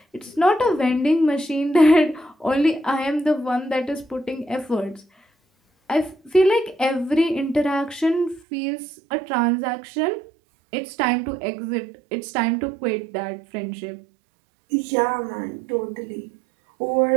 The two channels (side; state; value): left; drops out; at 8.4 s